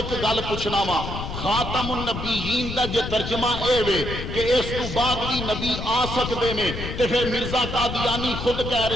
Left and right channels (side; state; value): left; noise; rumble, 6 dB below the sound